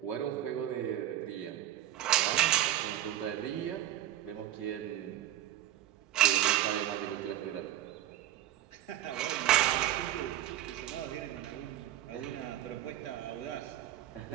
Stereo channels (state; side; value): quieter; left; 13.0 dB